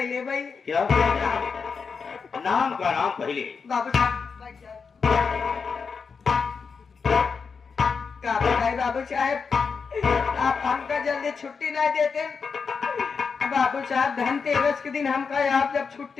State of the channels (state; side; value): quieter; right; 5.5 dB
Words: ले भाई। क्या नाम का नाम पहले? बाबू साहब क्या बताए बाबू साहब, आप हमका जल्दी छुट्टी नहीं देते। बाबू साहब धनतेरस के दिन हमका आप जब